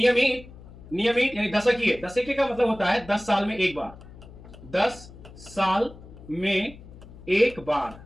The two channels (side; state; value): left; noise; hum, 18 dB below the sound